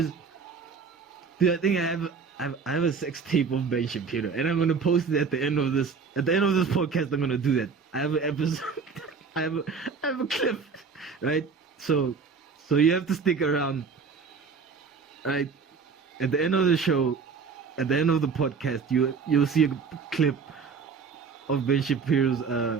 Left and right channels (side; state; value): left; quieter; 5.4 dB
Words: I have a sex tape of Ben Shapiro, and I'm gonna post it at the end of this podcast. I'm gonna do that. I have an episode. I have a clip, right? So you have to stick around, right? At the end of the show, at the end of the podcast, you'll see a clip of Ben Shapiro's